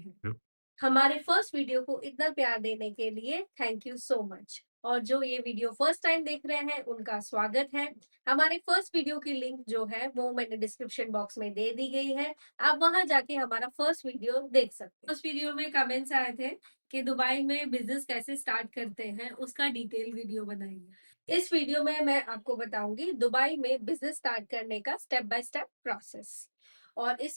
हमारे फर्स्ट वीडियो को इतना प्यार देने के लिए थैंक यू सो मच। और जो ये वीडियो फर्स्ट टाइम देख रहे हैं उनका स्वागत है। हमारे फर्स्ट वीडियो की लिंक जो है वो मैंने डिस्क्रिप्शन बॉक्स में दे दी गई है। आप वहां जाके हमारा फर्स्ट वीडियो देख सकते हैं। उस वीडियो में कमेंट्स आए थे कि दुबई में बिजनेस कैसे स्टार्ट करते हैं, उसका डिटेल वीडियो बनाइए। इस वीडियो में मैं आपको बताऊंगी दुबई में बिजनेस स्टार्ट करने का स्टेप बाय स्टेप प्रोसेस। और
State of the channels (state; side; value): inverted; both; correlation -1.00